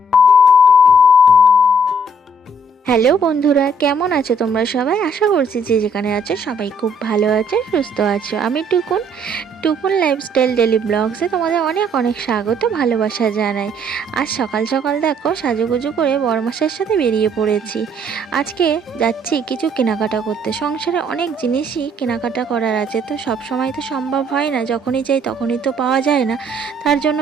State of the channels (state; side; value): normal; both; correlation 0.64